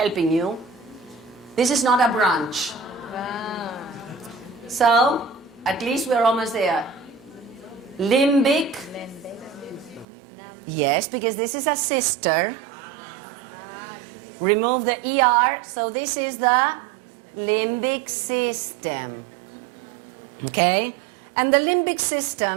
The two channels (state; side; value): drops out; left; at 10.1 s